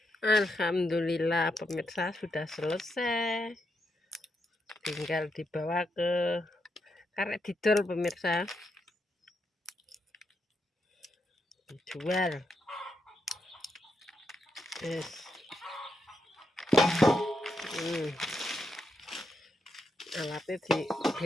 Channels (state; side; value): normal; both; correlation 0.82